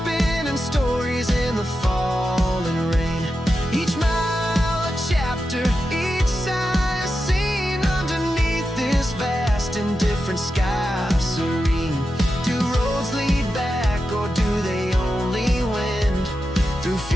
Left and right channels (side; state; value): both; normal; correlation 0.90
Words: stories in the falling rain. Each mile a chapter, each sigh a scene, underneath this vast and different sky serene. Do roads lead back, or do they only wend through